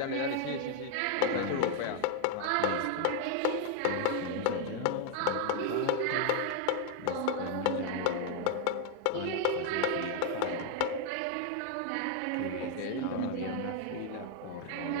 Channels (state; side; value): different; both; correlation 0.00